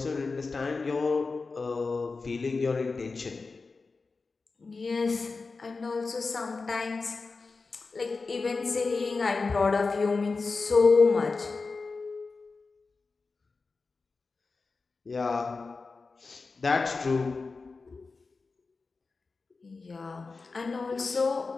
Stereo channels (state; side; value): quieter; right; 4.1 dB